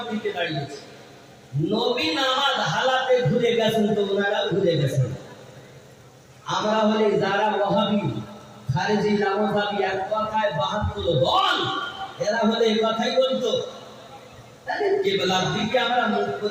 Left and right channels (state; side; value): identical; both; correlation 1.00